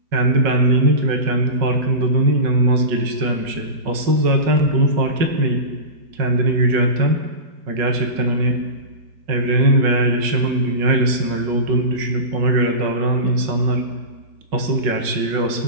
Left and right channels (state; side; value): late; left; 5.4 ms